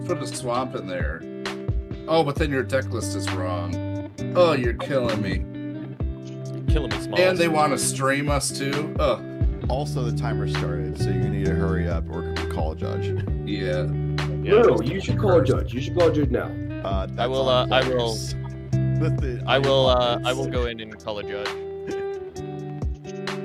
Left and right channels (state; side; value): identical; both; correlation 1.00